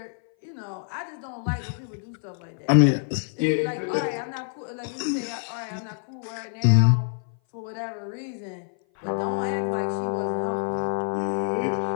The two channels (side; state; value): right; silent; 58 dB below the other